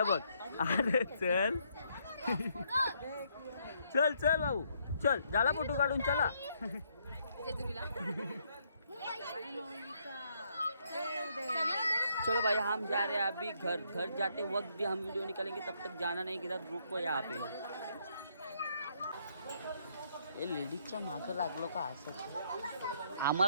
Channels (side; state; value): both; inverted; correlation -0.72